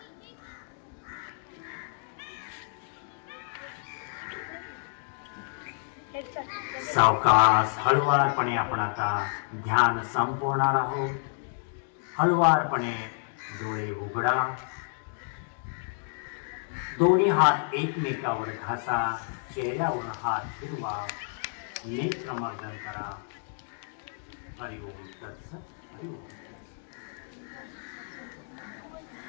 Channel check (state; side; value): silent; right; 58 dB below the other